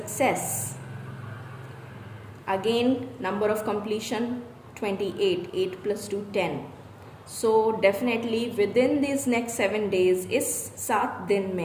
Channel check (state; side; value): identical; both; correlation 1.00